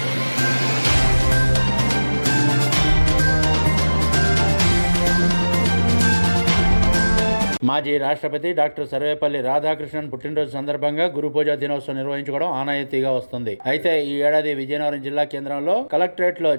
మాజీ రాష్ట్రపతి డాక్టర్ సర్వేపల్లి రాధాకృష్ణన్ పుట్టినరోజు సందర్భంగా గురు పూజా దినోత్సవం నిర్వహించుకోవడం ఆనవాయితీగా వస్తుంది. అయితే ఈ ఏడాది విజయనగరం జిల్లా కేంద్రంలో కలెక్టరేట్ లో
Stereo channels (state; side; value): inverted; both; correlation -1.00